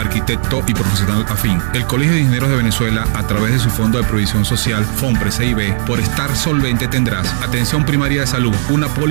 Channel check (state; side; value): silent; left; digital silence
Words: y profesional afín, el Colegio de Ingenieros de Venezuela, a través de su Fondo de Provisión Social, FONPRES CIB, por estar solvente tendrás atención primaria de salud, una